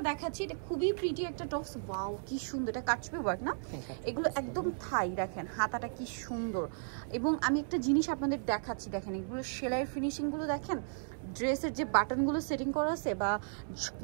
দেখাচ্ছি এটা খুবই প্রিটি একটা টপস। ওয়াও কি সুন্দর, এটা কাটছবি ওয়ার্ক না? এগুলো একদম থাই, দেখেন হাতাটা কি সুন্দর। এবং আমি একটা জিনিস আপনাদের দেখাচ্ছি, দেখেন এগুলো সেলাইয়ের ফিনিশিংগুলো দেখেন, ড্রেসের যে বাটনগুলো সেটিং করা আছে বা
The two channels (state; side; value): silent; left; 55 dB below the other